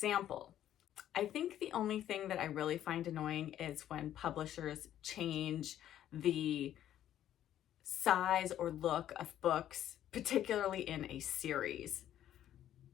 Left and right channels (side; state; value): right; quieter; 11.6 dB